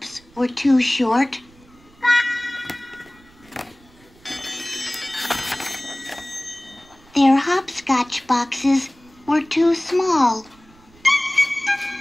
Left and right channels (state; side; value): noise; right; rumble, 28 dB below the sound